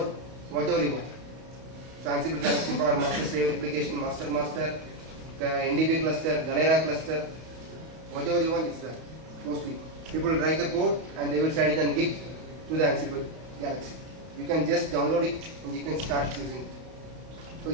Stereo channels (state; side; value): late; left; 32 ms